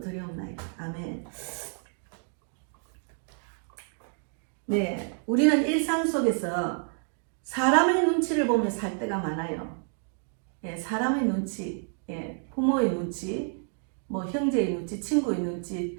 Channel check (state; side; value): silent; left; 56 dB below the other